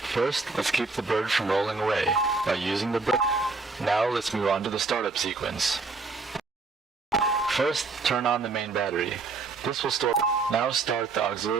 First, let's keep the bird from rolling away by using the brake. Now let's move on to the startup sequence. First, turn on the main battery. This will store. Now start the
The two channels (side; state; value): left; quieter; 4.1 dB